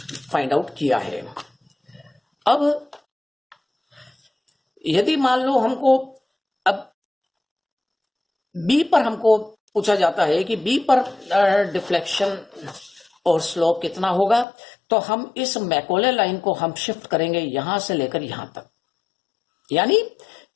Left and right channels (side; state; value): right; drops out; at 14.5 s